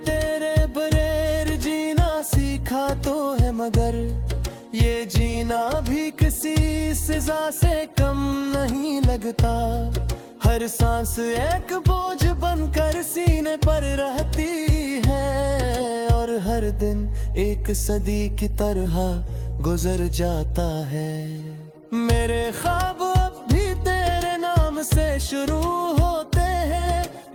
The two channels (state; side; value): identical; both; correlation 1.00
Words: तेरे बगैर जीना सीखा तो है, मगर ये जीना भी किसी सजा से कम नहीं लगता। हर सांस एक बोझ बनकर सीने पर रहती है, और हर दिन एक सदी की तरह गुजर जाता है। मेरे ख्वाब अब भी तेरे नाम से शुरू होते हैं,